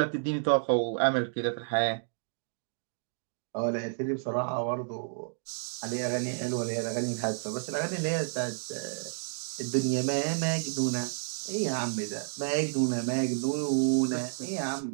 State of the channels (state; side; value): silent; left; digital silence